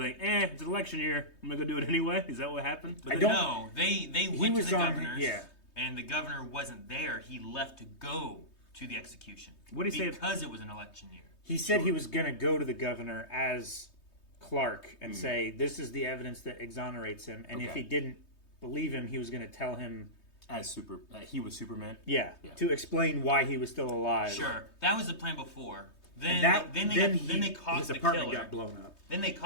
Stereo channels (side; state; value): right; late; 3.2 ms